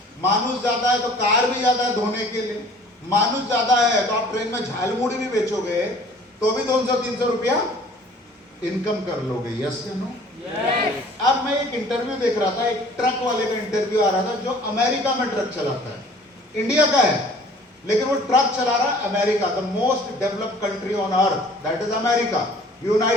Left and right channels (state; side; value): normal; both; correlation 0.51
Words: मानुष ज्यादा है तो कार भी ज्यादा है धोने के लिए, मानुष ज्यादा है तो आप ट्रेन में झालमुड़ी भी बेचोगे तो भी 200-300 रुपया इनकम कर लोगे। यस या नो? अब मैं एक इंटरव्यू देख रहा था, एक ट्रक वाले का इंटरव्यू आ रहा था जो अमेरिका में ट्रक चलाता है, इंडिया का है लेकिन वो ट्रक चला रहा है America, the most developed country on earth, that is America,